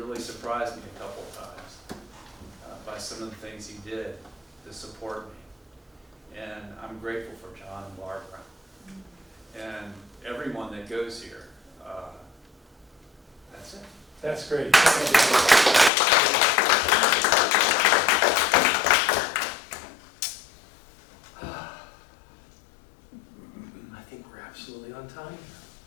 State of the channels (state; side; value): drops out; right; at 15.9 s